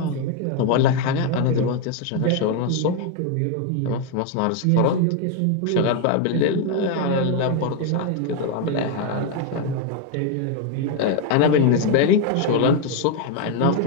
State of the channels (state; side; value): different; both; correlation 0.01